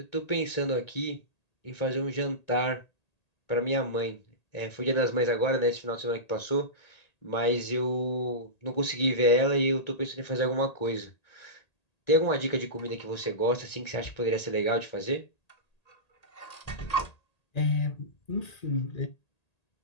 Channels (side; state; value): right; late; 1.8 ms